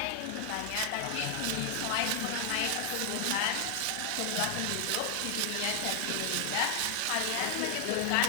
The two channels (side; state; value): both; different; correlation 0.00